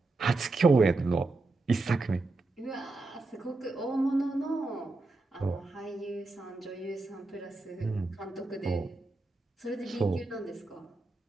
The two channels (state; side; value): quieter; left; 3.3 dB